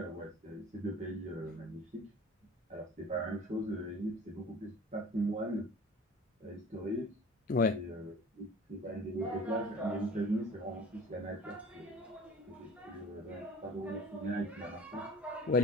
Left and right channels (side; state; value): both; normal; correlation 0.42